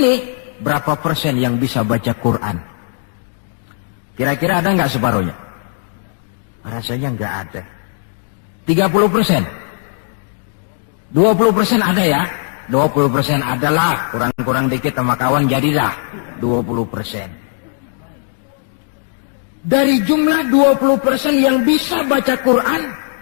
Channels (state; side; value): silent; right; 67 dB below the other